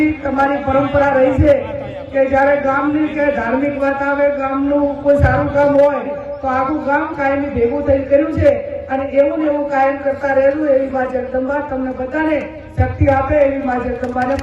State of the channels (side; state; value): both; identical; correlation 1.00